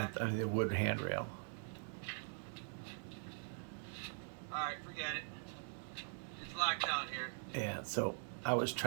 the wood handrail. Alright, forget it. It's locked down here. Yeah, so I was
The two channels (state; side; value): silent; left; digital silence